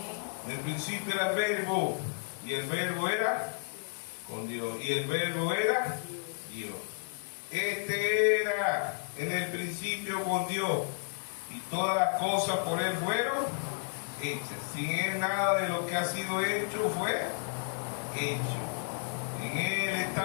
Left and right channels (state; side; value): silent; right; 55 dB below the other